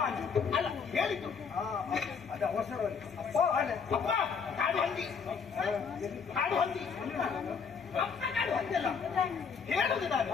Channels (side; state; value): right; quieter; 6.0 dB